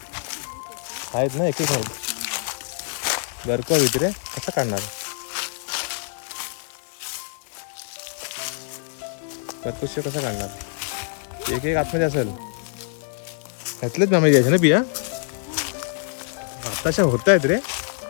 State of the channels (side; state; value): right; silent; 62 dB below the other